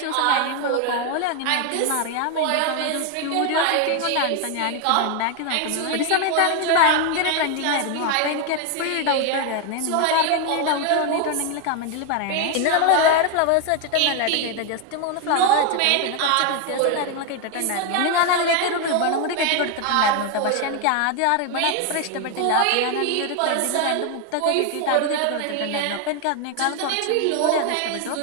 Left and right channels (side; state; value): both; different; correlation 0.01